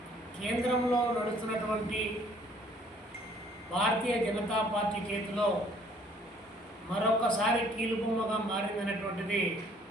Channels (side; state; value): both; normal; correlation 0.59